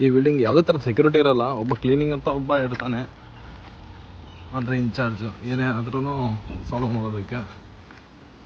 ಈ ಬಿಲ್ಡಿಂಗ್ ಯಾವುದೇ ಥರ ಸೆಕ್ಯೂರಿಟಿ ಇರಲ್ಲ. ಒಬ್ಬ ಕ್ಲೀನಿಂಗ್ ಅಂತ ಒಬ್ಬ ಇರ್ತಾನೆ, ಅಂದರೆ ಇನ್ಚಾರ್ಜು, ಏನೇ ಆದ್ರೂ ಸಾಲ್ವ್ ಮಾಡೋದಕ್ಕೆ.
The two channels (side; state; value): both; identical; correlation 1.00